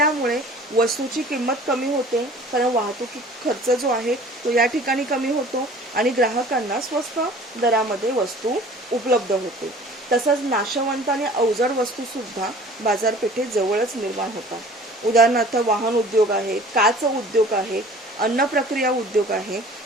वस्तूची किंमत कमी होते, कारण वाहतूक खर्च जो आहे तो या ठिकाणी कमी होतो आणि ग्राहकांना स्वस्त दरामध्ये वस्तू उपलब्ध होते. तसंच नाशवंत आणि अवजड वस्तू सुद्धा बाजारपेठेत जवळच निर्माण होतात. उदाहरणार्थ वाहन उद्योग आहे, काच उद्योग आहे, अन्न प्रक्रिया उद्योग आहे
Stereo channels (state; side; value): normal; both; correlation 0.47